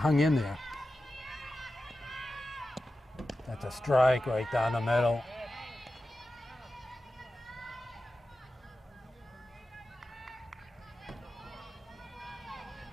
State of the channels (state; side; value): normal; both; correlation 0.93